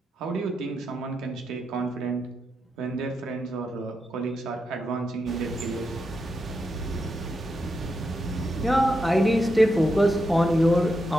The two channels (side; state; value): both; normal; correlation 0.85